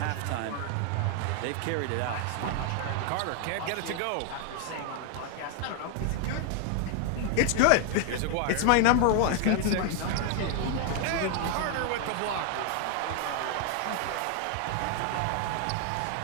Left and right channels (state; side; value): different; both; correlation 0.00